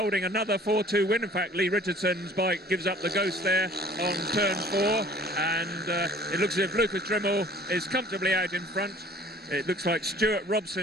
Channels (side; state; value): both; normal; correlation 0.51